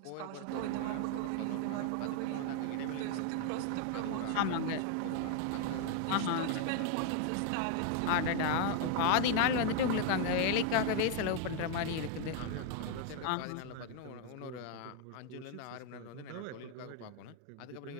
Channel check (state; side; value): different; both; correlation 0.00